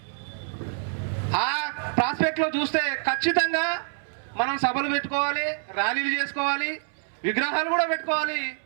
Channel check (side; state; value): left; silent; 61 dB below the other